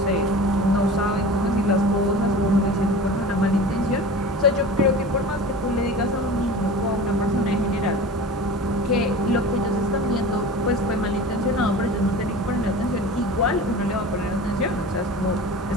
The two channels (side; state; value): both; normal; correlation 0.36